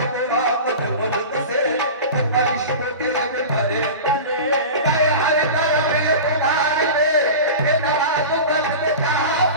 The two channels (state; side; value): inverted; both; correlation -0.31